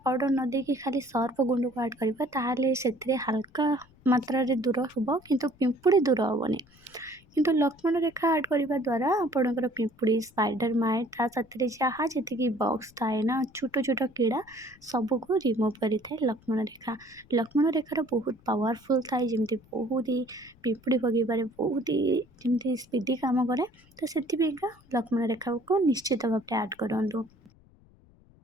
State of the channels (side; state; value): left; noise; rumble, 28 dB below the sound